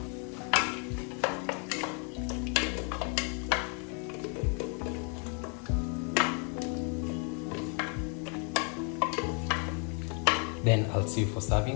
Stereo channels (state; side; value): quieter; right; 37.9 dB